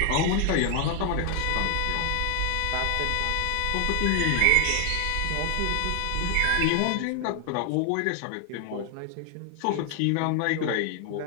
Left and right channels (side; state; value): both; different; correlation 0.00